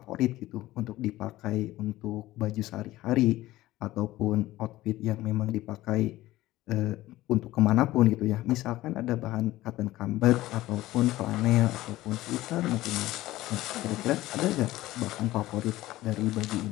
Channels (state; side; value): quieter; right; 16.5 dB